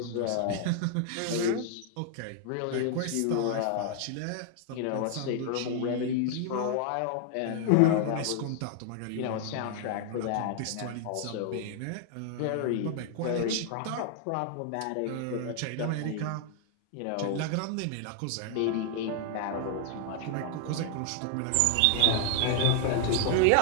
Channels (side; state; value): both; different; correlation 0.00